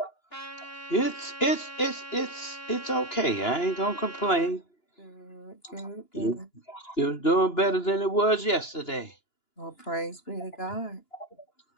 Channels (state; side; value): late; right; 2.9 ms